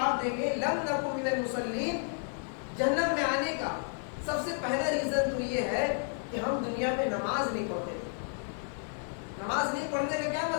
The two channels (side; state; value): right; silent; 57 dB below the other